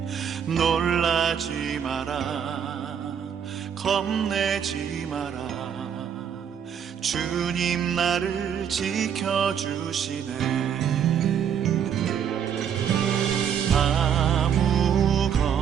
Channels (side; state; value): left; quieter; 8.2 dB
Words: 놀라지 마라, 겁내지 마라. 주님 나를 지켜주시네.